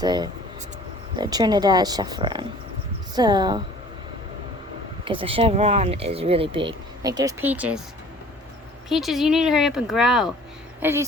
Trinidad chevron. So, because the chevron is really big. Like, there's Peaches. Peaches, you need to hurry up and grow. As you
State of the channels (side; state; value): both; normal; correlation 0.49